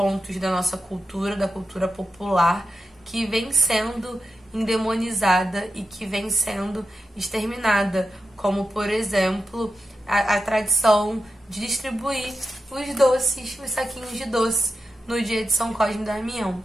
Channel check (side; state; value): both; normal; correlation 0.90